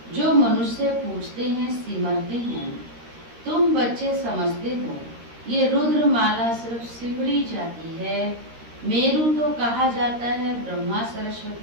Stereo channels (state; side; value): late; left; 13 ms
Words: जो मनुष्य पूछते हैं सिमरते हैं। तुम बच्चे समझते हो ये रुद्र माला सिर्फ सिमरी जाती है। मेरू तो कहा जाता है ब्रह्मा